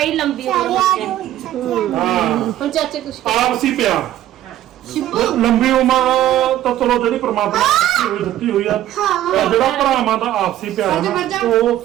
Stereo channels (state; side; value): quieter; left; 13.0 dB